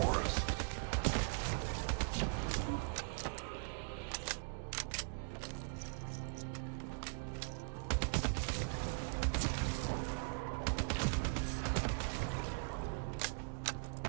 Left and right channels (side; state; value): left; silent; digital silence